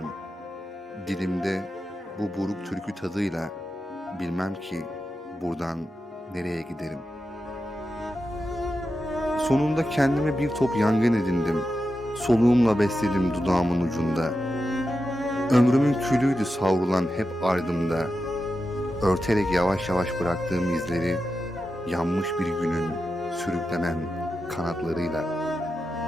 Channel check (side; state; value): both; normal; correlation 0.90